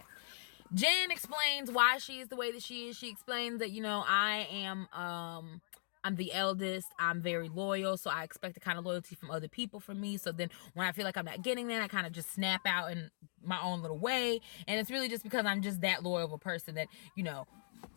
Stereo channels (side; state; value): right; silent; digital silence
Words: Jen explains why she is the way that she is. She explains that, I'm the eldest. I'm very loyal, so I expect the kind of loyalty from other people from me. So then when I feel like I'm not getting that, I kind of just snap out in my own little way. And it's really just because I'm just that loyal of a person that,